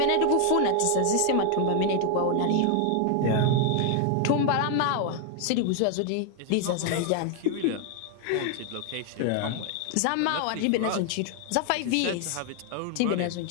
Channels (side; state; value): both; different; correlation 0.00